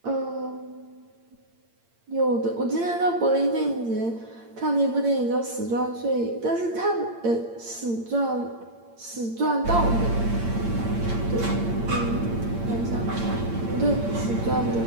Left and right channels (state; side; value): late; left; 8.8 ms